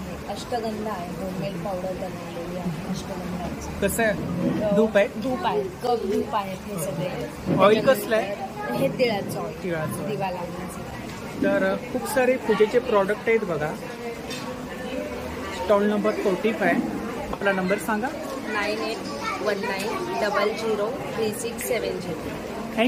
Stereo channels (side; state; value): both; identical; correlation 1.00